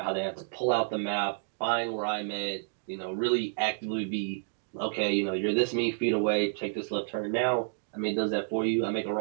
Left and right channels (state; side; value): silent; left; digital silence